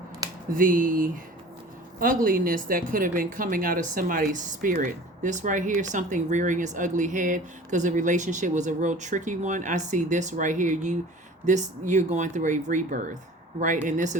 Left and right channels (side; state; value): both; normal; correlation 0.43